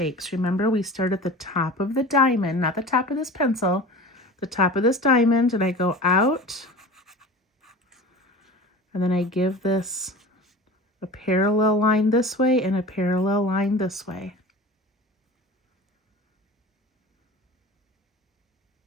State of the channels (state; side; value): normal; both; correlation 0.36